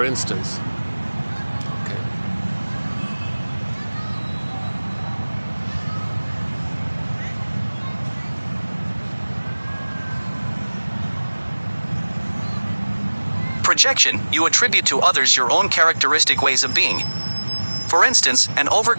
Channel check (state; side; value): inverted; both; correlation -1.00